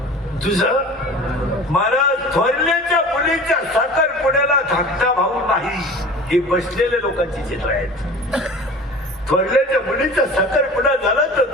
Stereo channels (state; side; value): normal; both; correlation 0.39